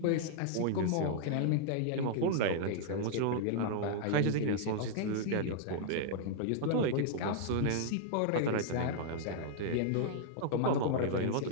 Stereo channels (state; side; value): different; both; correlation -0.01